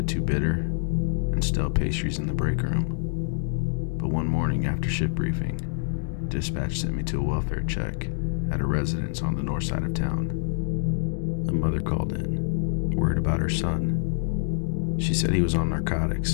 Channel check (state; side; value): silent; right; digital silence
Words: too bitter, and stale pastries in the break room. But one morning after shift briefing, dispatch sent me to a welfare check at a residence on the north side of town. A mother called in, worried about her son. She said he was on